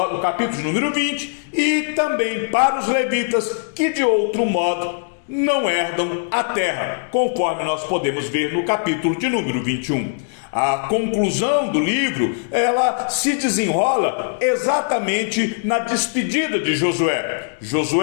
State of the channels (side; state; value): right; silent; digital silence